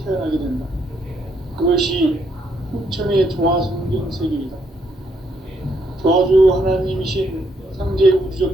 태어나게 된다. 그것이 후천의 조화성경 세계이다. 조화주 하나님이신 상제 우주적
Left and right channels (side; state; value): both; normal; correlation 0.73